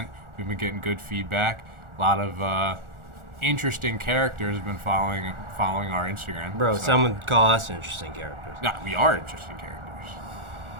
We've been getting good feedback. A lot of interesting characters have been following our Instagram. Bro, some would call us interesting characters. No, we are interesting characters.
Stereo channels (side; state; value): left; late; 1.4 ms